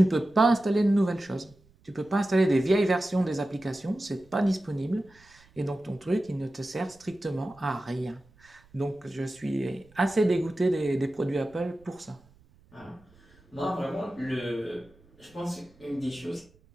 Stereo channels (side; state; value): right; noise; rumble, 29 dB below the sound